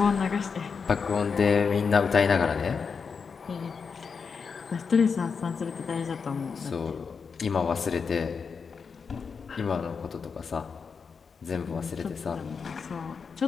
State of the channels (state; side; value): quieter; right; 5.6 dB